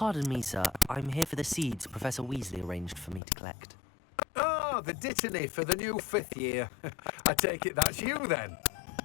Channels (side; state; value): right; drops out; at 3.2 s